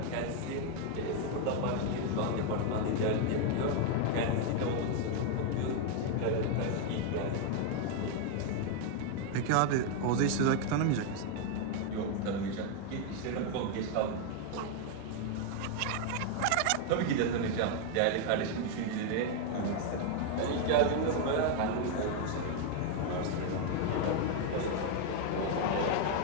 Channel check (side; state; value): both; different; correlation 0.01